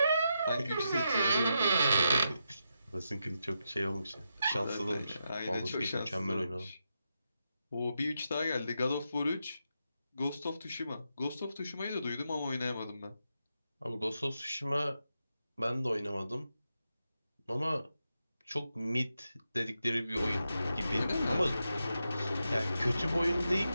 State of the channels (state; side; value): inverted; both; correlation -0.86